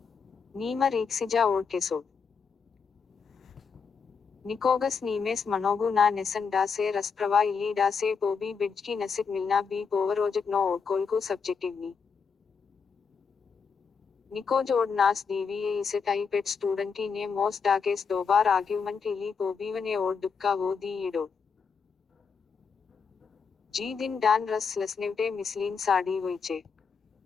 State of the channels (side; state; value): right; quieter; 5.8 dB